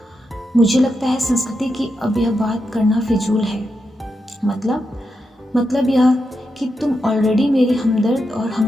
मुझे लगता है संस्कृति की अब यह बात करना फिजूल है। मतलब यह कि तुम ऑलरेडी मेरी हमदर्द और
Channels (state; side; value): normal; both; correlation 0.86